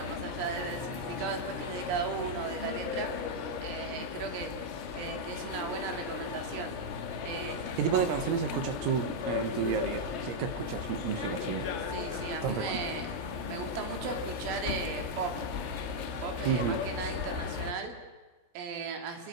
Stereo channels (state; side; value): late; left; 17 ms